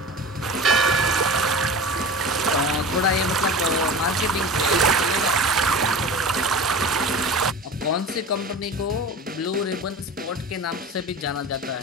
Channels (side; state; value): both; normal; correlation 0.34